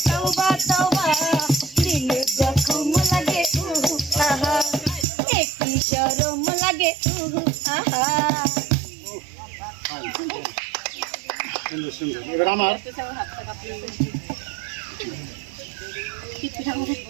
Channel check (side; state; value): left; drops out; at 5.1 s